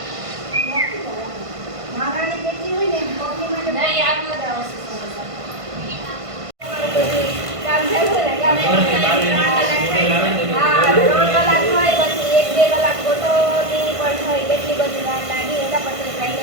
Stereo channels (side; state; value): left; late; 1.5 ms